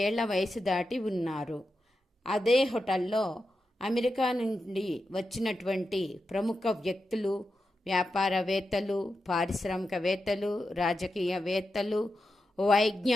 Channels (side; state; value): both; normal; correlation 0.89